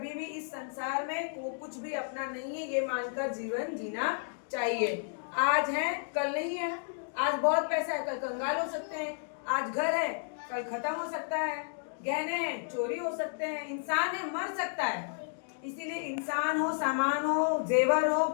भी इस संसार में को कुछ भी अपना नहीं है, ये मानकर जीवन जीना चाहिए। आज है कल नहीं है, आज बहुत पैसा है कल कंगाल हो सकते हैं, आज घर है कल खत्म हो सकता है, गहने हैं चोरी हो सकते हैं, इंसान है मर सकता है। इसीलिए इंसान हो, सामान हो, जेवर हो,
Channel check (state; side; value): silent; right; digital silence